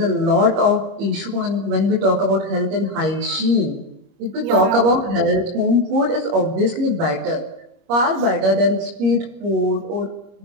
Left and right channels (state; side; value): late; left; 30 ms